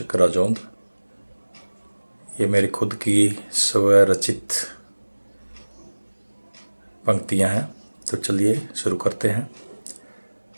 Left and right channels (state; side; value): inverted; both; correlation -1.00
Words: राजौंद। ये मेरी खुद की स्वरचित पंक्तियाँ हैं। तो चलिए शुरू करते हैं।